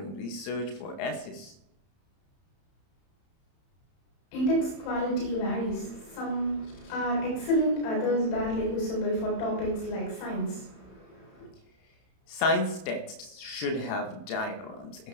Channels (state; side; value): late; right; 31 ms